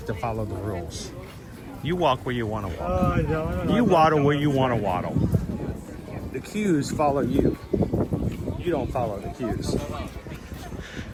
to follow the rules. You walk where you want to walk. You waddle where you want to waddle. The cues follow you. You don't follow the cues.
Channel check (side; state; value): both; identical; correlation 1.00